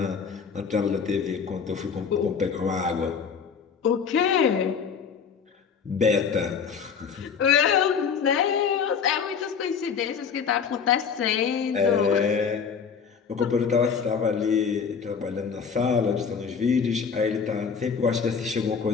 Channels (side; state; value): right; quieter; 6.3 dB